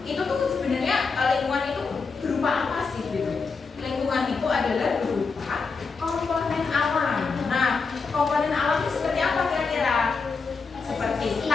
Itu tuh sebenarnya lingkungan itu berupa apa sih gitu? adalah berupa komponen alam. Nah, komponen alam itu seperti apa kira-kira? Seperti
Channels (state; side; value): quieter; right; 4.8 dB